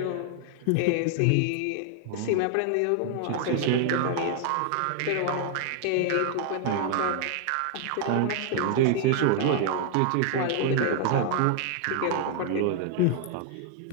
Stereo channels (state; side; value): different; both; correlation 0.00